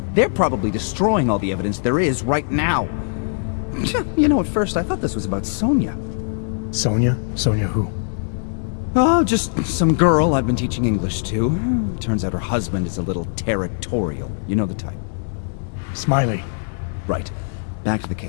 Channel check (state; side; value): silent; right; digital silence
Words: They're probably destroying all the evidence there is right now. You know, at first I thought this was about Sonia. Sonia? Sonia who? Oh, just some girl I've been teaching English to. Turns out her husband is a little territorial. You know the type. Smiley. Right. Back to the